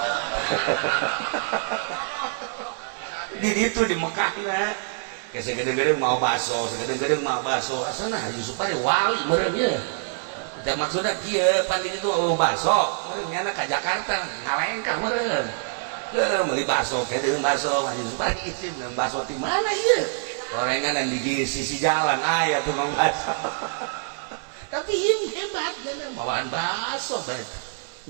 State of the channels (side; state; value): left; silent; digital silence